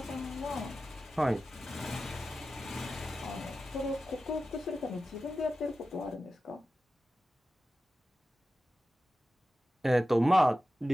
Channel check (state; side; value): normal; both; correlation 0.94